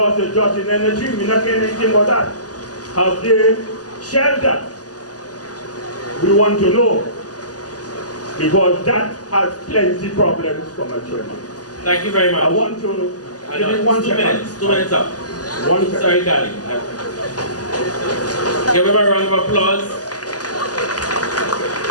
their jobs in energy? We're not hearing anything about that. Have they shelved that? We want to know, because that has plenty of problems from a chairman. Thank you very much. I want to give you 1 second. 2 minutes up. 1 second. Sorry, darling. Give him a round of applause.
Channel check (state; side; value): late; right; 0.68 ms